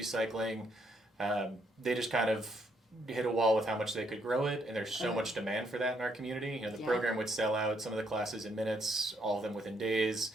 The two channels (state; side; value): normal; both; correlation 0.72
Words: Cycling. They just kind of hit a wall with how much they could grow it, and there's so much demand for that in our community. The program would sell out some of the classes in minutes, all of them within days.